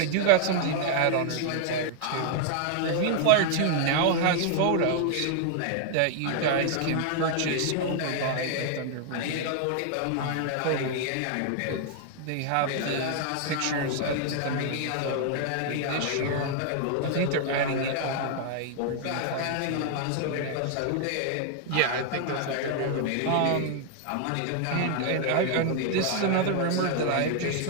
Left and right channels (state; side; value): different; both; correlation 0.00